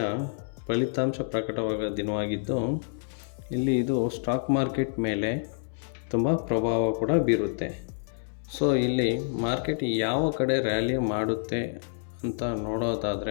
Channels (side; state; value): right; silent; 59 dB below the other